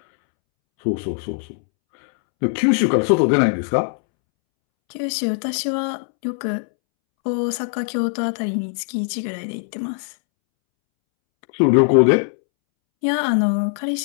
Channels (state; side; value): silent; right; 65 dB below the other